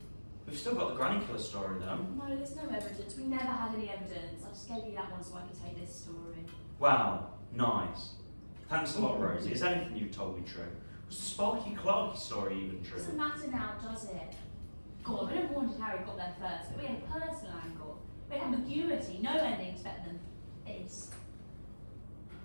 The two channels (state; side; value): inverted; both; correlation -1.00